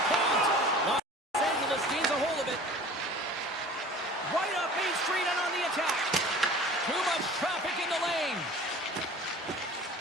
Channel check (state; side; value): normal; both; correlation 0.44